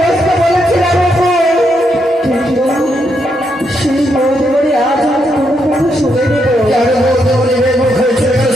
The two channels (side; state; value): both; normal; correlation 0.79